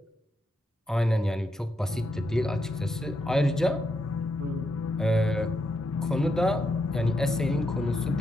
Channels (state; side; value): normal; both; correlation 0.82